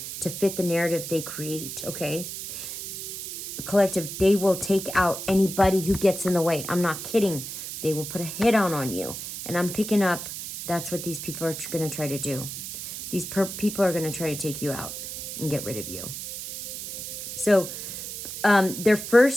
to fit the narrative they create, okay? Collective, they will take out anybody who gets in the way. I'm not kidding. They will put a hit on you. And I'm picking up, that's what these people are going to try to do. These people are going to try to take you out and get rid of you. So their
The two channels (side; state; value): right; noise; hiss, 8 dB below the sound